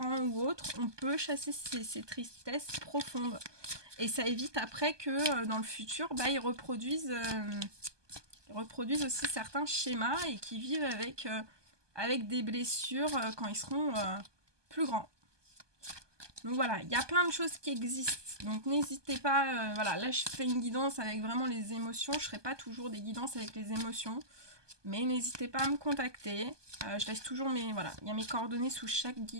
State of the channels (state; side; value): late; left; 1.2 ms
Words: ou autres, on peut chasser ces tristesses profondes. Et ça évite après que dans le futur, bah, ils reproduisent aussi certains schémas et qu'ils vivent avec des blessures quand ils seront plus grands. Donc voilà, il y a plein de choses qui existent. Donc n'hésitez pas, voilà, là je fais une guidance avec vraiment les émotions. Je ne ferai pas toujours des guidances avec les émotions. Mais n'hésitez pas à me contacter. Je laisse toujours voilà, il y a mes coordonnées sous chaque